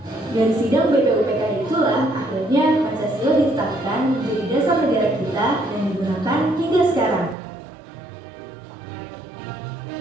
Dari sidang BPU PKI itulah akhirnya Pancasila ditetapkan menjadi dasar negara kita dan digunakan hingga sekarang.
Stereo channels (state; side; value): drops out; left; at 7.4 s